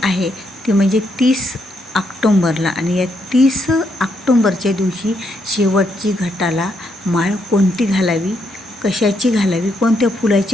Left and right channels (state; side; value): normal; both; correlation 0.77